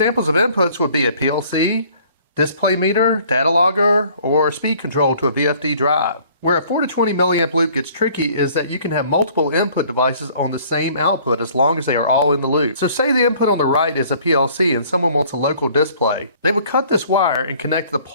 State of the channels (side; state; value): both; inverted; correlation -0.55